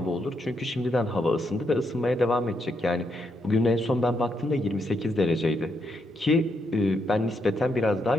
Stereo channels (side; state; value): both; normal; correlation 0.79